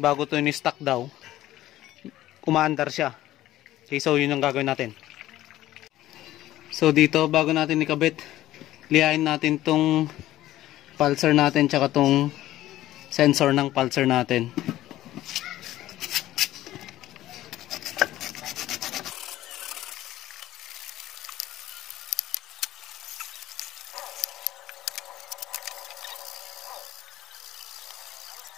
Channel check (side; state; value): right; quieter; 14.7 dB